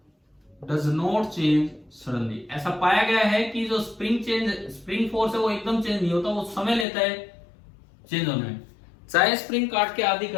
डज नॉट चेंज सडनली। ऐसा पाया गया है कि जो स्प्रिंग फोर्स है वो एकदम चेंज नहीं होता, वो समय लेता है चेंज होने में। चाहे स्प्रिंग काट के आधी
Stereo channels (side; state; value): right; drops out; at 6.9 s